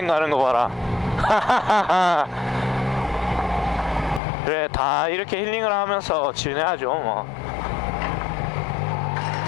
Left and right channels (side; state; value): right; drops out; at 4.2 s